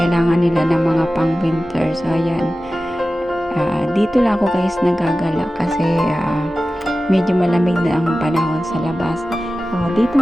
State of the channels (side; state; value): both; normal; correlation 0.95